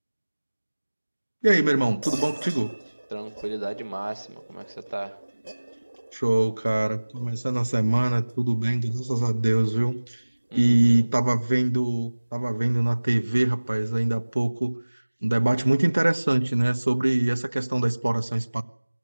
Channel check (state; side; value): inverted; both; correlation -1.00